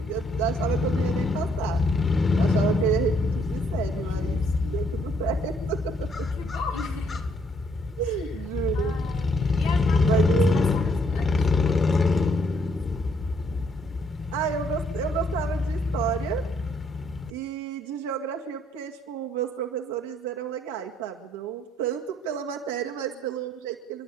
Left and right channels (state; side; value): normal; both; correlation 0.68